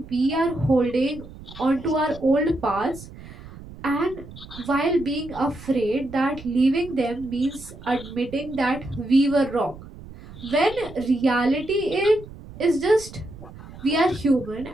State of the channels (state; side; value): noise; right; rumble, 16 dB below the sound